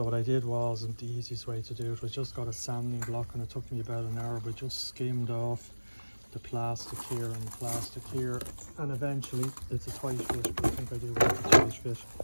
what I did was, and the easiest way to do it was, just got a sanding block, and it took me about an hour, but just skimmed off the plastic here and the plastic here, and eventually it's a tight fit, but I think I do want a tight fit.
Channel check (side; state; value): both; inverted; correlation -1.00